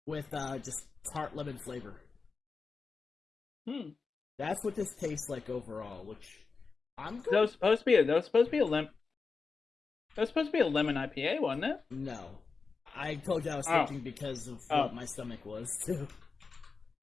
with just tart lemon flavor. Hmm. That's what this tastes like overall. Which I'm That going. was supposed to be that was supposed to be a lemon. That was supposed to be a lemon IPA, wasn't it? No, I told you I was Oh. switching because of what my stomach was too.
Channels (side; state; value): right; quieter; 4.7 dB